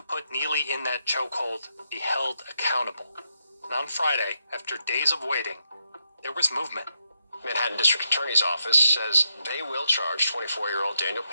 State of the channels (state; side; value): inverted; both; correlation -0.80